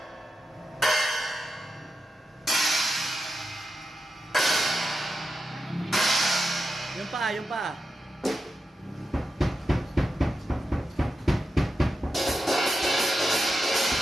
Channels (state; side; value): normal; both; correlation 0.89